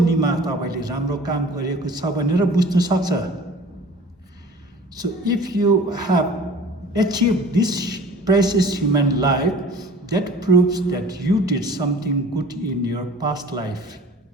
तपाईले राम्रो काम गरेको छ भनेर बुझ्नु सक्छ। So if you have achieved this precious human life, that proves that you did something good in your past life.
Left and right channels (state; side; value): normal; both; correlation 0.45